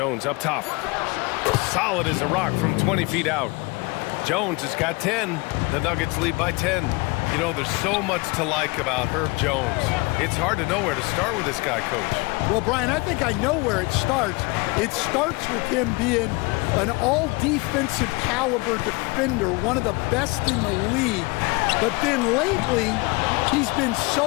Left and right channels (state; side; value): quieter; right; 26.1 dB